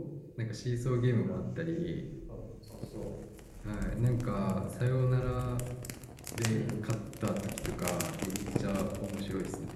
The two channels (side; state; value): both; identical; correlation 1.00